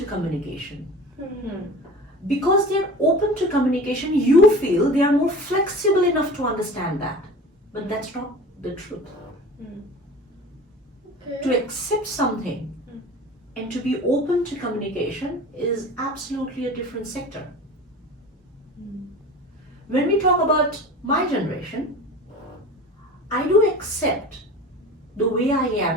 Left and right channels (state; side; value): normal; both; correlation 0.37